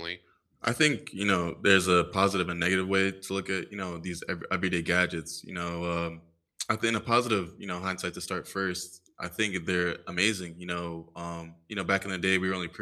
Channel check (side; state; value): both; identical; correlation 1.00